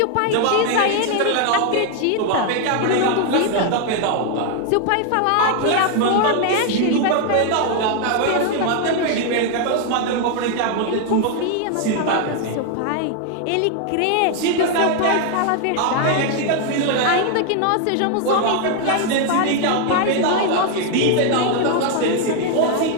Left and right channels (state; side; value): different; both; correlation 0.00